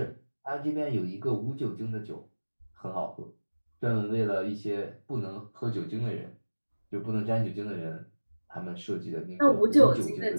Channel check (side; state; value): both; inverted; correlation -1.00